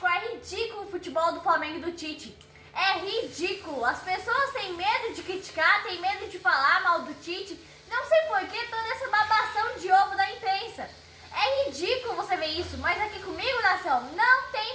é ridículo o futebol do Flamengo e do Tite. É ridículo. As pessoas têm medo de criticar, têm medo de falar mal do Tite. Não sei por que toda essa babação de ovo da imprensa. É ridículo você ver isso, mas aqui comigo, nação, não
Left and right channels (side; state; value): both; identical; correlation 1.00